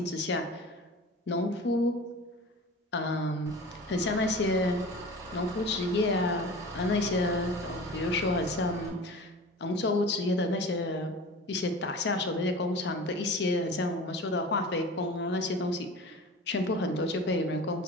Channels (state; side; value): normal; both; correlation 0.37